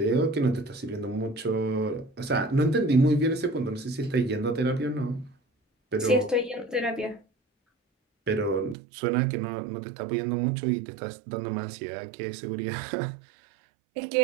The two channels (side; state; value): left; drops out; at 8.8 s